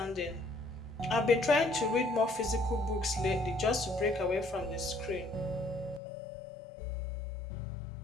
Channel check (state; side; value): drops out; right; at 6.0 s